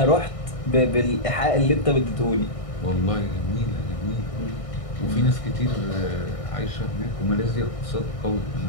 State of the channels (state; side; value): late; right; 1.6 ms